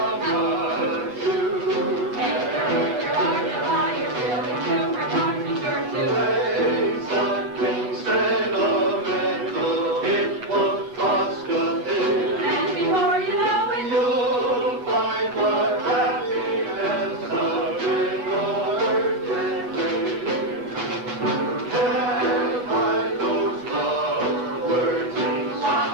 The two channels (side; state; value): left; late; 8.1 ms